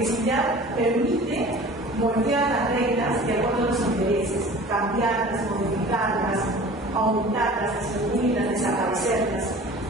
permite moldear las reglas de acuerdo a los intereses, cambiarlas, modificarlas, aumentarlas, disminuirlas, desaparecerlas.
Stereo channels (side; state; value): both; normal; correlation 0.43